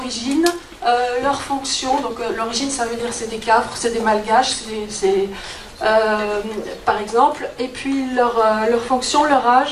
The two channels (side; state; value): both; identical; correlation 1.00